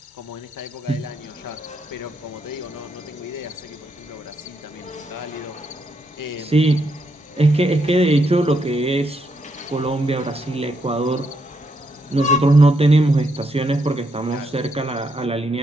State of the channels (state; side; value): normal; both; correlation 0.78